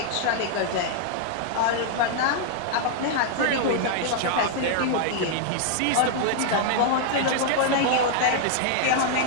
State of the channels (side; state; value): both; different; correlation -0.01